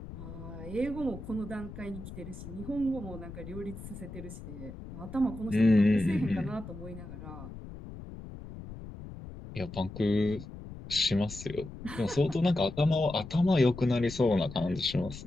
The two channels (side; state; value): left; noise; rumble, 12 dB below the sound